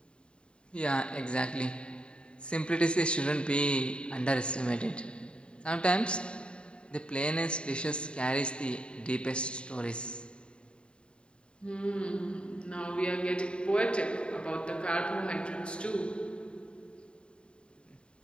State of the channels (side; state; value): right; late; 0.053 ms